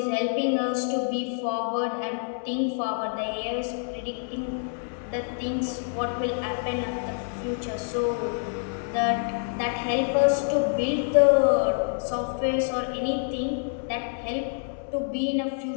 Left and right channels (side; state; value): right; silent; digital silence